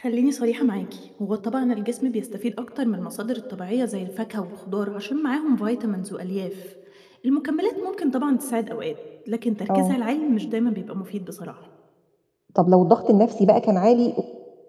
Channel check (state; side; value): identical; both; correlation 1.00